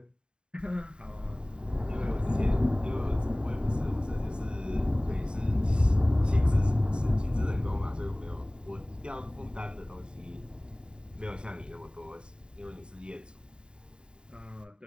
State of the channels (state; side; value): late; left; 0.050 ms